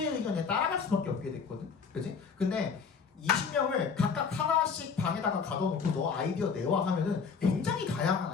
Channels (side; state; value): right; quieter; 5.8 dB